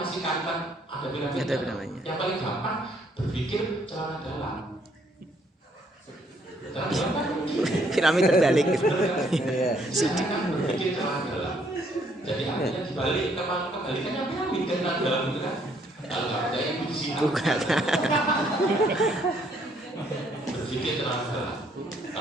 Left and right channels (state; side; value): normal; both; correlation 0.67